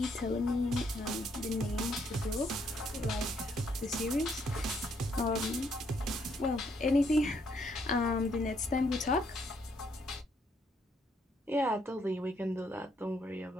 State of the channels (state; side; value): normal; both; correlation 0.71